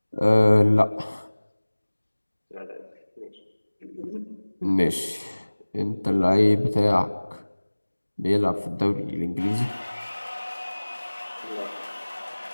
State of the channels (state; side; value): inverted; both; correlation -1.00